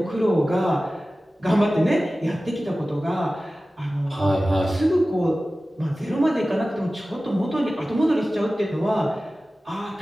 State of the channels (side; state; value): both; normal; correlation 0.96